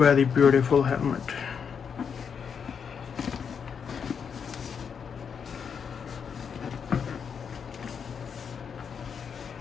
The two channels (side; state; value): right; quieter; 6.8 dB